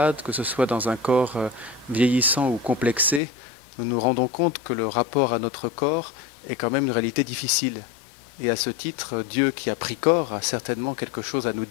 que ce soit dans un corps vieillissant ou complexé, nous nous rendons compte que le rapport à notre corps est quand même une réalité difficile. Et à ce titre, Dieu qui a pris corps a certainement quelque chose à nous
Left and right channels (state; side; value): drops out; right; at 3.2 s